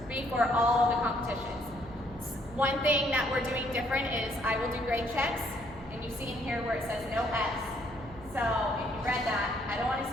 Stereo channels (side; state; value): left; noise; hum, 19 dB below the sound